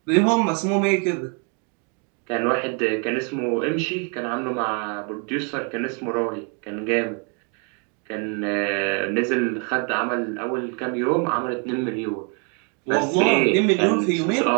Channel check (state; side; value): quieter; left; 37.7 dB